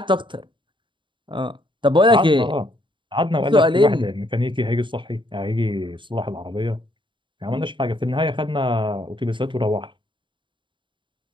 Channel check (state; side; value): late; left; 0.23 ms